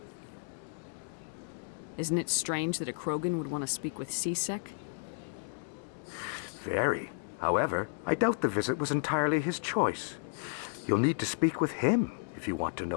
Isn't it strange that a Krogan would want to speak with CSEC? Very. However, I doubt the visit was entirely his choice. You'll need to speak with him if you want to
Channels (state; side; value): silent; right; digital silence